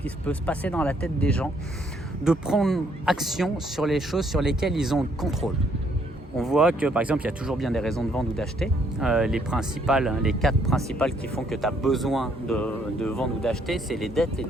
peut se passer dans la tête des gens, de prendre action sur les choses sur lesquelles ils ont le contrôle? On voit que par exemple il y a toujours bien des raisons de vendre ou d'acheter. Les 4 principales qui font que tu as besoin de vendre ou d'acheter, c'est les dettes, les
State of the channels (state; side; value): normal; both; correlation 0.68